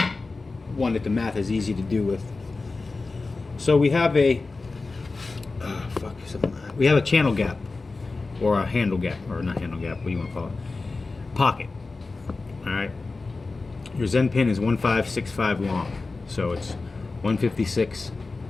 one that the math is easy to do with. So we have a we have a channel gap, or a handle gap, or not handle gap, what do you want to call it? Pocket. All right. Your Zen pin is 1565 long, so it's 156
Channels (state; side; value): quieter; right; 3.7 dB